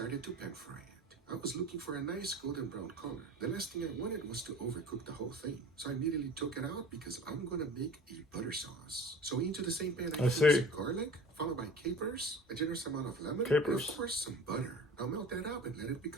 to pan fry it. I was looking for a nice golden brown color. The last thing I wanted was to overcook the whole thing. So I immediately took it out because I'm gonna make a butter sauce. So into the same pan I threw some garlic, followed by capers, a generous amount of lemon, and of course some butter. Now melt that up and let it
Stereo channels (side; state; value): both; normal; correlation 0.40